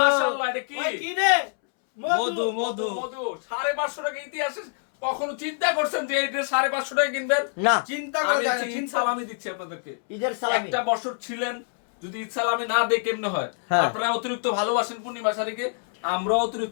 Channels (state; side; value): silent; right; 61 dB below the other